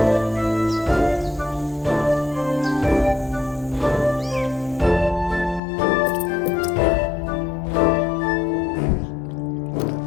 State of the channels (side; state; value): right; drops out; at 5.6 s